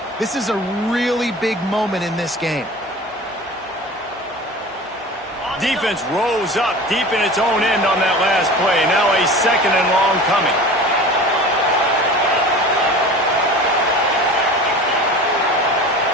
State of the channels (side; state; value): both; normal; correlation 0.37